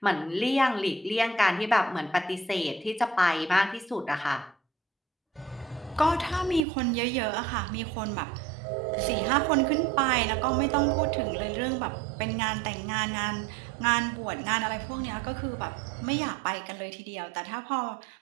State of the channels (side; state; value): left; drops out; at 6.7 s